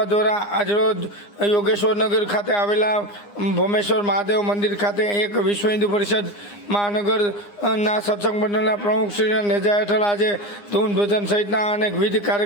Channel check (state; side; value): late; right; 9.8 ms